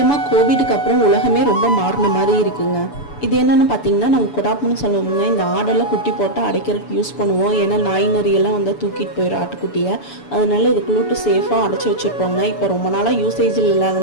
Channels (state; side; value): late; right; 7.0 ms